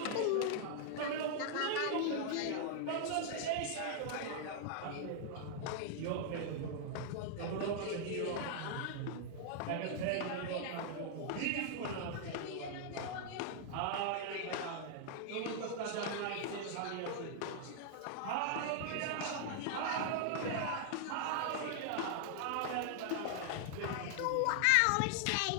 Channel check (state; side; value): different; both; correlation 0.00